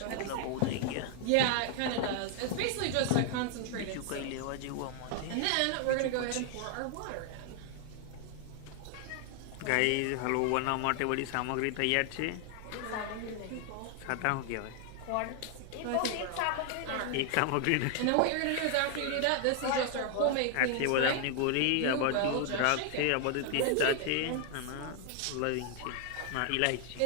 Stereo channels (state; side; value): different; both; correlation 0.00